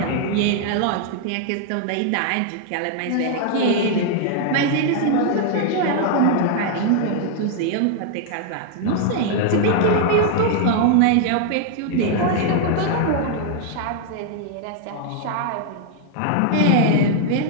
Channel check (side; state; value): both; different; correlation 0.00